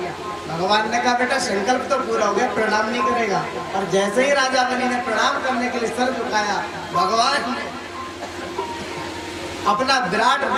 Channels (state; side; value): identical; both; correlation 1.00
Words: भगवान ने कहा बेटा संकल्प तो पूरा हो गया, प्रणाम नहीं करेगा। और जैसे ही राजा बलि ने प्रणाम करने के लिए सर झुकाया, भगवान ने अपना विराट